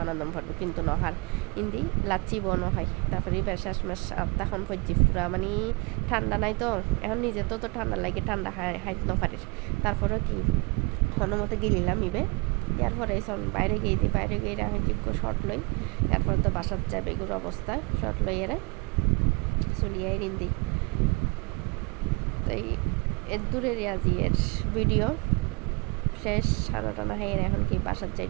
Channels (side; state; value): left; quieter; 29.3 dB